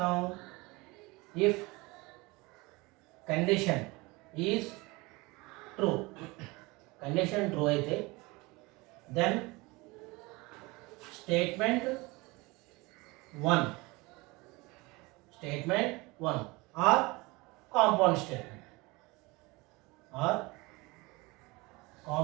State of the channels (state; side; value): quieter; left; 23.8 dB